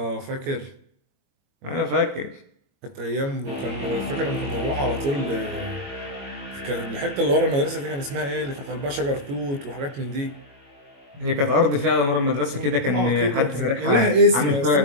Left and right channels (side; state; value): left; late; 22 ms